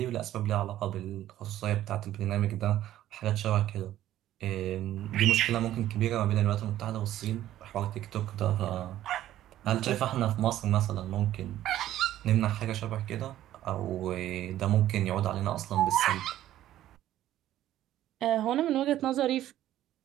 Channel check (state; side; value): quieter; left; 13.1 dB